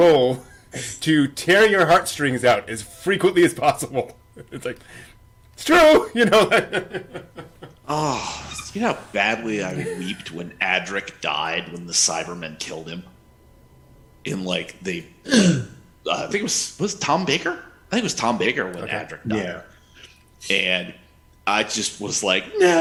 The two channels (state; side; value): identical; both; correlation 1.00